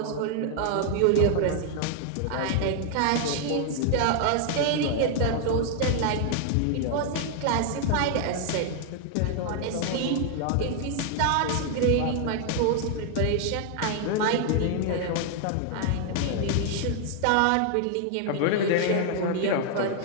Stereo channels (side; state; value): both; different; correlation 0.00